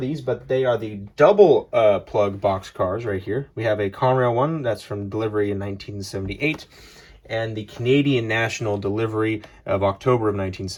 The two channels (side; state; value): both; identical; correlation 1.00